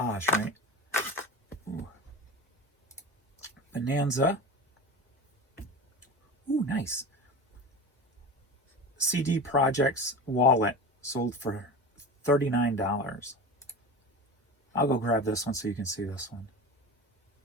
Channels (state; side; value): normal; both; correlation 0.30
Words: right? Ooh. Bonanza. Ooh, nice. CD Projects wallet sold for $39. I'll go grab this one so you can see this one.